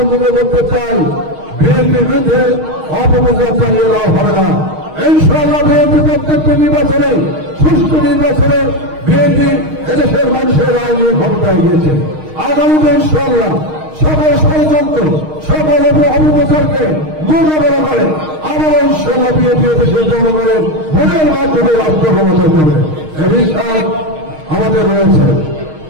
করতে চাই। বিএনপির বিরুদ্ধে অপপ্রচার চালিয়ে লাভ হবে না। ইনশাআল্লাহ বিএনপি প্রত্যেকটি নির্বাচনে, সুষ্ঠু নির্বাচনে বিএনপি এদেশের মানুষের রায় নিয়ে ক্ষমতায় গিয়েছে। আগামীতে ইনশাআল্লাহ সকল ষড়যন্ত্র, সকল অপপ্রচারকে মোকাবেলা করে আবারও ইনশাআল্লাহ বিএনপি এদেশের জনগণের ভোটের মাধ্যমে রাষ্ট্র ক্ষমতায় যাবে, এই বিশ্বাস আমাদের রয়েছে।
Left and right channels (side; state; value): left; late; 6.4 ms